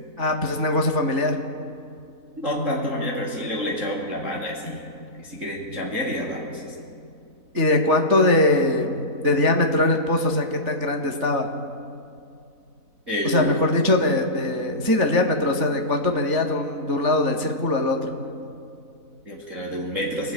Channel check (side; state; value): left; late; 4.0 ms